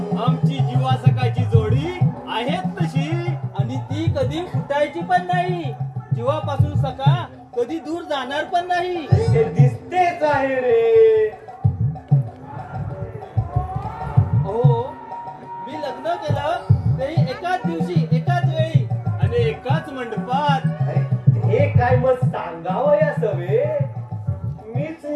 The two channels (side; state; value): both; identical; correlation 1.00